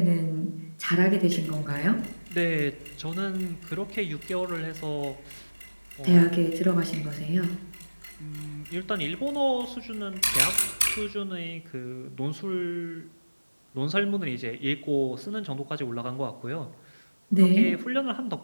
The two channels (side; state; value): both; inverted; correlation -1.00